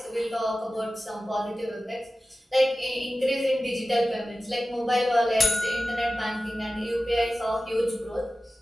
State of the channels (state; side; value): normal; both; correlation 0.94